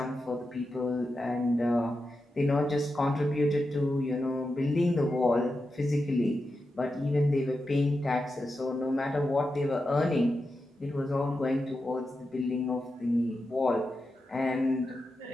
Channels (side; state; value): both; normal; correlation 0.89